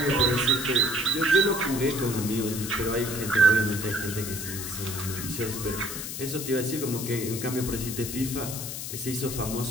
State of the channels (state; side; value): noise; left; hiss, 6 dB below the sound